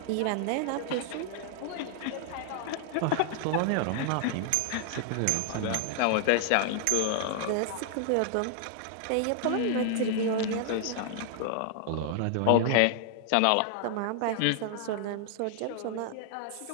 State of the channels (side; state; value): both; different; correlation -0.01